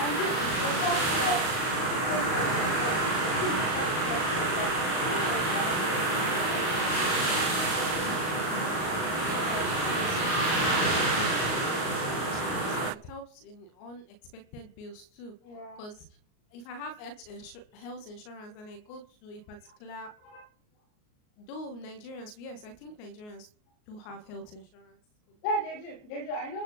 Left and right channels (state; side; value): late; right; 38 ms